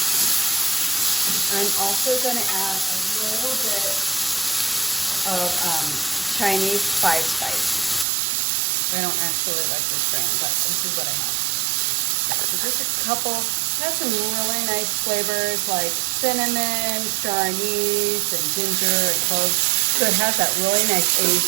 I'm also going to add a little bit of Chinese five spice. I don't actually like this brand, but this is what I have. So just a couple, has some really nice flavors like cinnamon, star anise, and ginger and cloves. So it has that really nice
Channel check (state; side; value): drops out; left; at 8.1 s